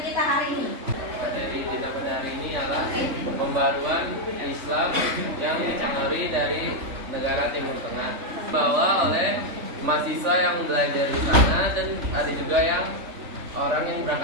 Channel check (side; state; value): left; late; 3.4 ms